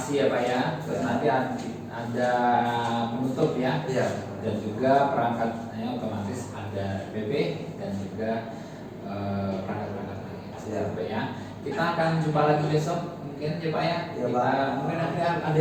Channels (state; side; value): identical; both; correlation 1.00